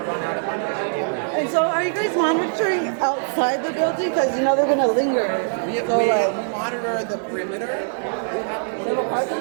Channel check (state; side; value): silent; left; digital silence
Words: run out of money. And so are you guys monitoring outside the building? Because you know they're going to linger. We monitor the perimeter. We have a parking